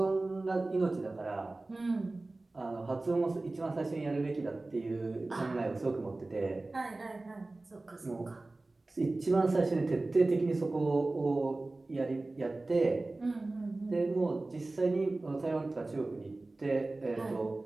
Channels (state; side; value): quieter; left; 3.1 dB